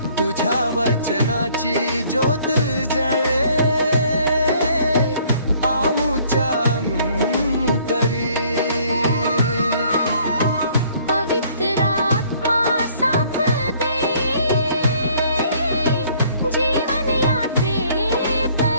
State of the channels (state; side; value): inverted; both; correlation -0.60